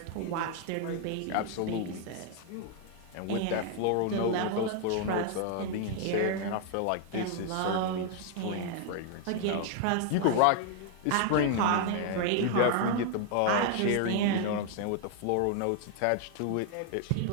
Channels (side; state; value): both; different; correlation 0.00